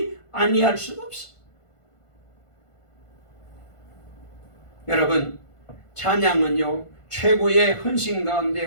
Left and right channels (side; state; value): right; late; 1.5 ms